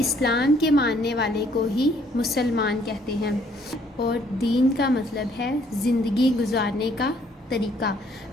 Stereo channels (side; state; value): both; normal; correlation 0.64